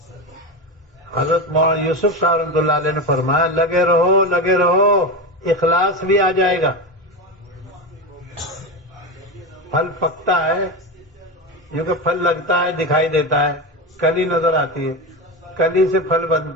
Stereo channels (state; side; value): normal; both; correlation 0.19